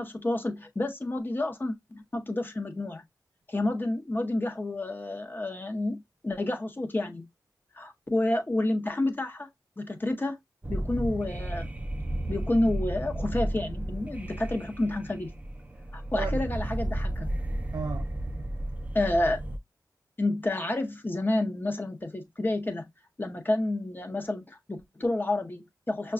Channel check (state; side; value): normal; both; correlation 0.95